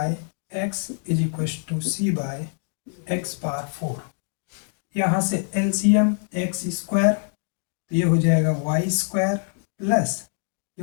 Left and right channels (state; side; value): silent; right; 62 dB below the other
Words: x is equal to c by x power four. यहाँ से एलसीएम एक्स स्क्वायर, तो ये हो जाएगा वाई स्क्वायर प्लस